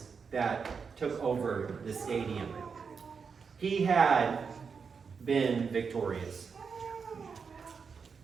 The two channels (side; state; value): left; quieter; 5.7 dB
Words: that took over the stadium. He had been victorious.